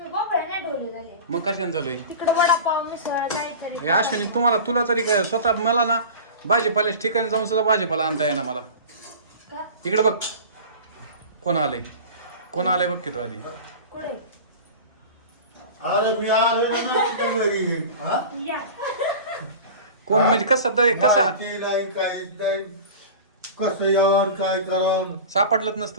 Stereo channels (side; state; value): both; inverted; correlation -0.34